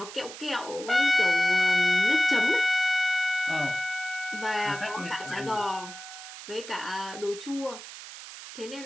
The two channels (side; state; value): right; noise; hiss, 13 dB below the sound